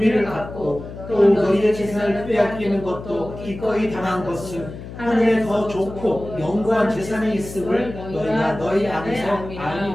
갖고 또 너희의 재산을 빼앗기는 것도 기꺼이 당한 것은 하늘에 더 좋고 영구한 재산이 있음을 너희가 너희 안에서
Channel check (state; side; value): noise; left; hum, 12 dB below the sound